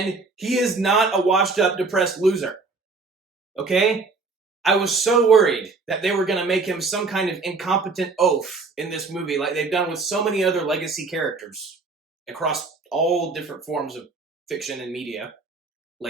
he is not a washed-up, depressed loser. Okay? I was so worried that they were going to make him some kind of incompetent oaf in this movie, like they've done with so many other legacy characters across all different forms of fiction and media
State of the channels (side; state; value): left; quieter; 4.0 dB